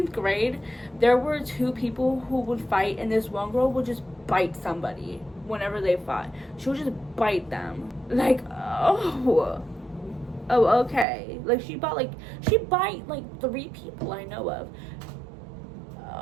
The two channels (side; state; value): left; drops out; at 11.1 s